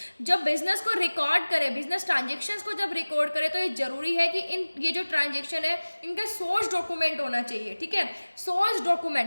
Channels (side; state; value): both; inverted; correlation -1.00